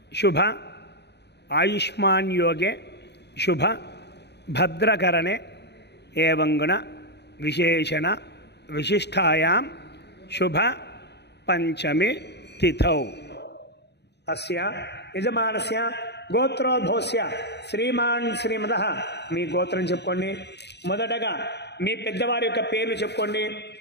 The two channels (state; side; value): late; right; 0.49 ms